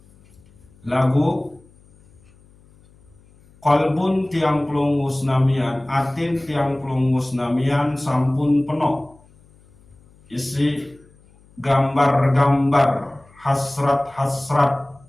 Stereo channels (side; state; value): left; noise; hum, 29 dB below the sound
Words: Lagu qalbun tiang pelunggu senamian, atin tiang pelunggu senamian sampun penuh isi gambar-gambar hasrat-hasrat